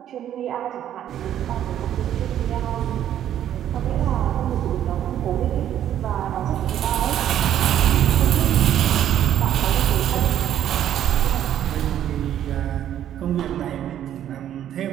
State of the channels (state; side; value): quieter; left; 10.9 dB